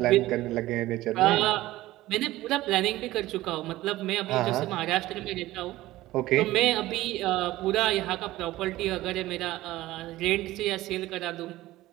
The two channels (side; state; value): left; quieter; 16.7 dB